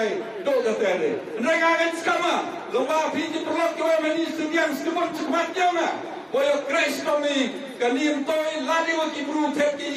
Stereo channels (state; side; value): identical; both; correlation 1.00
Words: do kata ni. Mereka akan skama, lomba pinjam perlok kau meni sediang sekemat jama. Boyo crash kami kanim toy ladi waki bru